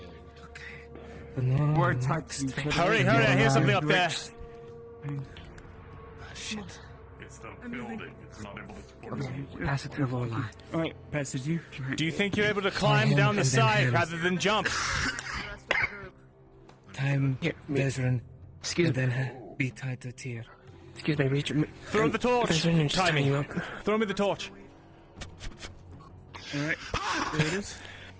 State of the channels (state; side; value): identical; both; correlation 1.00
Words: We're tied to each other. Hurry, hurry, I hear something up there. Shit. It's the building. It's not able to support us. Pass it to the line. Alright, pass it you. Do you think you're able to climb him down the and then side him. rather than jump? Time, Vesryn. Excuse and me. then be tied to Teal. Excuse me, reach. Throw the torch. Vesryn, just Tie tie me. you up. Throw me the torch. Alright, there it is.